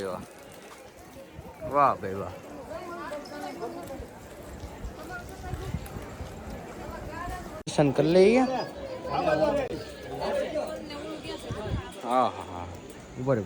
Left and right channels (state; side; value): identical; both; correlation 1.00